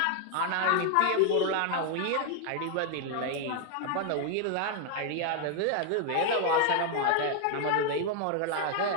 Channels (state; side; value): different; both; correlation 0.00